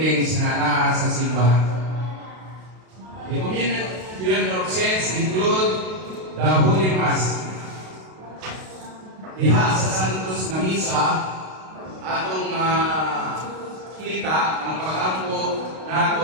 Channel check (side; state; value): left; late; 32 ms